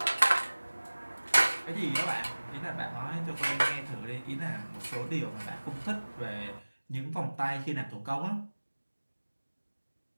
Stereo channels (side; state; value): both; inverted; correlation -1.00